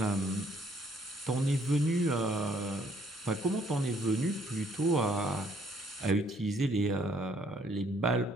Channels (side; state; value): both; normal; correlation 0.65